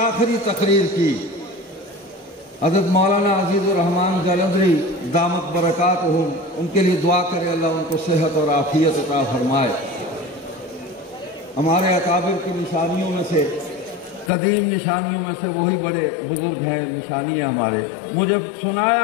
تقریر کی۔ حضرت مولانا عزیز الرحمان جلندری دامت برکاتہم، ان کے لیے دعا کرے اللہ ان کو صحت اور عافیت عطا فرمائے۔ ہمارے اکابر کی نشانیوں میں سے، قدیم نشانیوں میں سے وہی بڑے بزرگ ہیں، نشانی ہے ہمارے۔ مجھے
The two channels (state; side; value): drops out; right; at 14.3 s